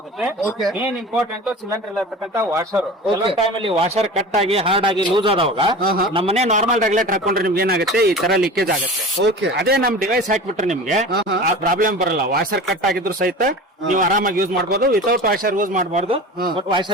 ಮೇನ್ ಇಂಪಾರ್ಟೆಂಟ್ ಸಿಲಿಂಡರ್ ಇರತಕ್ಕಂತ ವಾಷರ್. ಕೆಲವೊಂದು ಟೈಮ್ ಅಲ್ಲಿ ವಾಷರ್ ಕಟ್ ಆಗಿ ಹಾರ್ಡ್ ಆಗಿ ಲೂಸ್ ಆದವಾಗ ನಮ್ಮನೆ ನಾರ್ಮಲ್ ರೆಗ್ಯುಲೇಟರ್ ಹಾಕೊಂಡ್ರೆ ನಿಮ್ಗೆ ಏನಾಗುತ್ತೆ, ಈ ತರ ಲೀಕೇಜ್ ಆಗುತ್ತೆ. ಅದೇ ನಮ್ ಡಿವೈಸ್ ಹಾಕ್ಬಿಟ್ರೆ ನಿಮ್ಗೆ ಆ ಪ್ರಾಬ್ಲಮ್ ಬರಲ್ಲ. ವಾಷರ್ ಕಟ್ ಆಗಿದ್ರು ಸಹಿತ ನೀವು ಆರಾಮಾಗಿ ಯೂಸ್ ಮಾಡಬಹುದು. ವಿತೌಟ್ ವಾಷರ್ ಯೂಸ್ ಮಾಡಬಾರ್ದು, ಬಟ್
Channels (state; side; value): normal; both; correlation 0.35